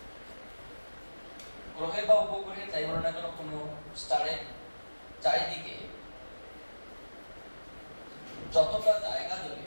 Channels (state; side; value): inverted; both; correlation -1.00